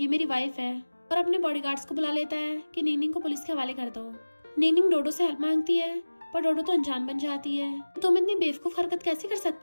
मेरी वाइफ है, और अपने बॉडीगार्ड्स को बुला लेता है कि निंगनिंग को पुलिस के हवाले कर दो। निंगनिंग डोडो से हेल्प मांगती है, पर डोडो तो अनजान बन जाती है। तुम इतनी बेवकूफ हरकत कैसे कर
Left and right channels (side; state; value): both; inverted; correlation -1.00